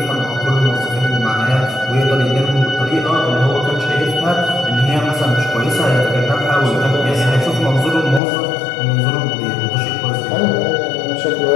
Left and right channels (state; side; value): drops out; right; at 8.2 s